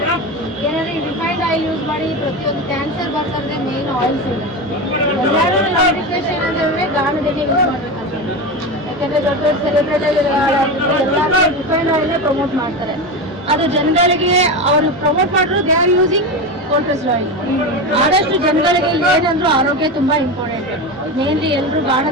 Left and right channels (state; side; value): normal; both; correlation 0.20